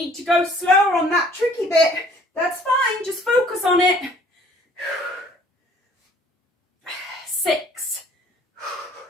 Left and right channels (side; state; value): both; normal; correlation 0.56